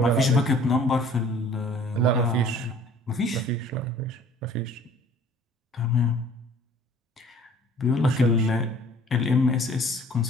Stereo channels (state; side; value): normal; both; correlation 0.52